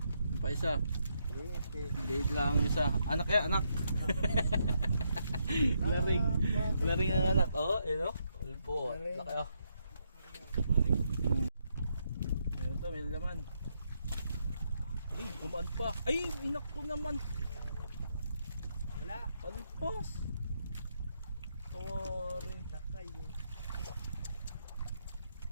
Pa isa. Liit lang ang isa. Anak. Laring ang anak. Oh, yun o. Ulpo. Laki o. Meron to, may laman. Ay, gumaan pa. Ay, inak ko naman. Wala. Palpas. Tawari. Lakay eh.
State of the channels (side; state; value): both; inverted; correlation -0.78